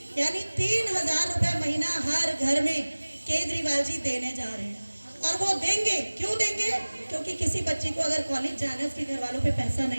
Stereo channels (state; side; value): inverted; both; correlation -1.00